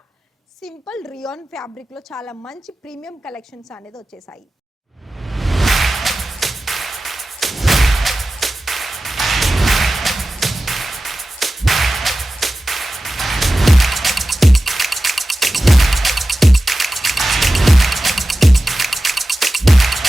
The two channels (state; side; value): normal; both; correlation 0.94